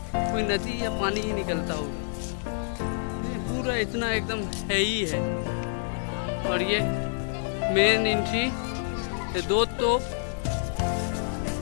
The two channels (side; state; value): right; silent; 60 dB below the other